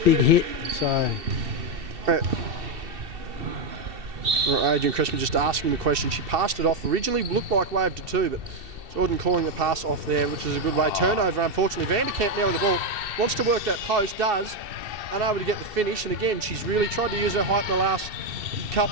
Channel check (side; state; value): left; late; 2.7 ms